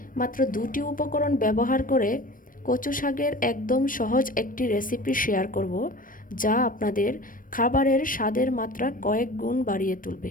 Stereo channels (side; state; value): right; late; 0.40 ms